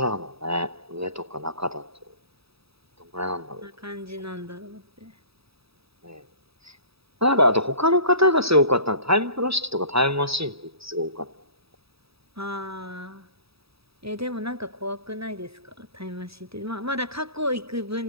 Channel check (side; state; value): left; late; 0.77 ms